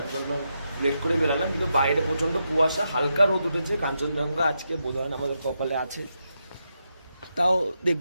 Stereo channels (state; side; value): inverted; both; correlation -0.84